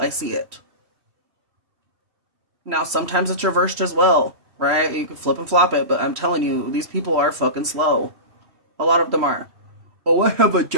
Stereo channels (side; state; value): left; late; 3.0 ms